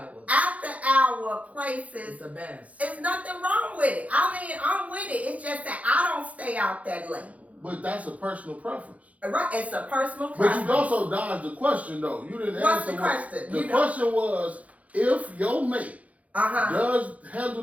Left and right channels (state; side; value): late; left; 0.068 ms